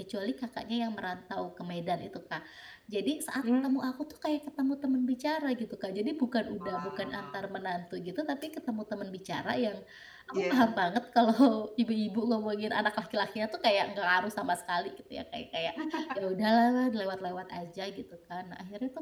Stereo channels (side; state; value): both; identical; correlation 1.00